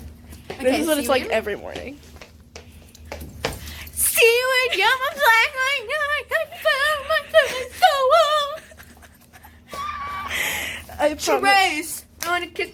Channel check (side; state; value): both; identical; correlation 1.00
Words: This is what it's like every morning. See when you're my black light, I found my phone so well. Trace, I wanna kiss.